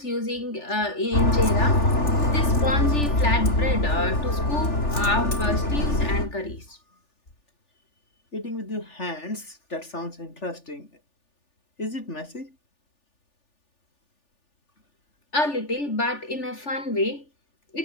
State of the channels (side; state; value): right; late; 3.4 ms